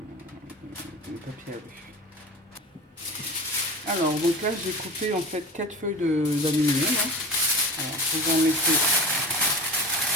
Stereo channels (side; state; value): both; normal; correlation 0.33